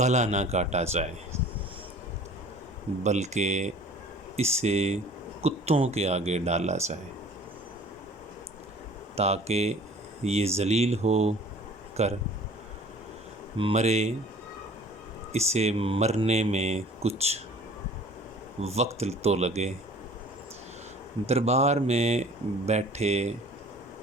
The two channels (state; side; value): normal; both; correlation 0.48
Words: نہ کاٹا جائے بلکہ اسے کتوں کے آگے ڈالا جائے تاکہ یہ ذلیل ہو کر مرے، اسے مرنے میں کچھ وقت تو لگے۔ دربار میں بیٹھے